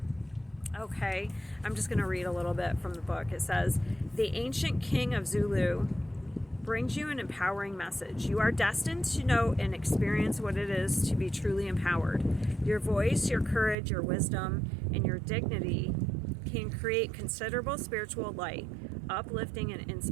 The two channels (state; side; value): drops out; left; at 13.8 s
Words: Okay, I'm just going to read a little bit from the book. It says, the ancient king of Zulu brings you an empowering message. You are destined to know and experience what it is to be truly empowered. Your voice, your courage, your wisdom, and your dignity can create considerable spiritual light, uplifting and